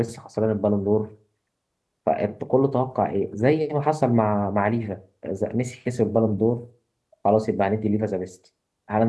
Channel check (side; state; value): both; identical; correlation 1.00